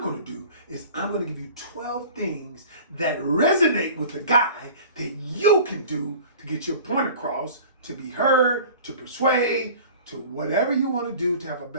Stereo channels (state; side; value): inverted; both; correlation -0.42